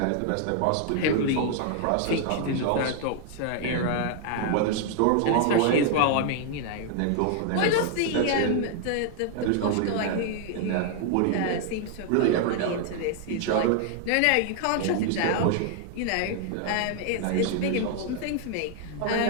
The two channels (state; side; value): different; both; correlation 0.00